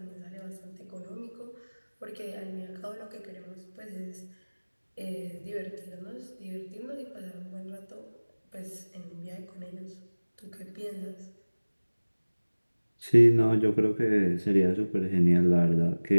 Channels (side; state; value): both; inverted; correlation -1.00